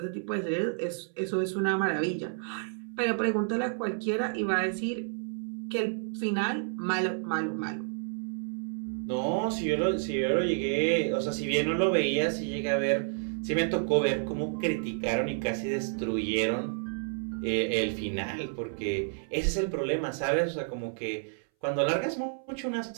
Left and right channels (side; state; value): left; silent; 58 dB below the other